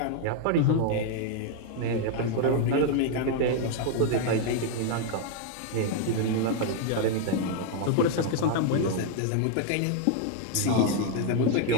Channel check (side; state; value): both; different; correlation 0.00